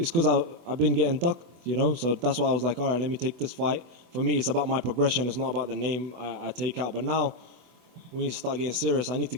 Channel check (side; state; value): left; late; 24 ms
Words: because I've been getting ducked, you know, so that's why I was like, all right, let me take this fight. For me, it's about my progression. It's not about the name I take out. But now we need to start getting serious. I need to